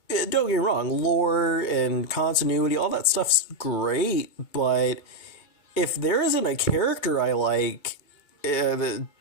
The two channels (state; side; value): late; right; 2.2 ms